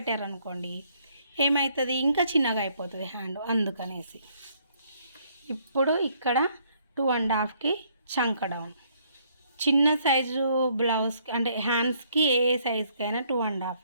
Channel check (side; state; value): both; inverted; correlation -0.67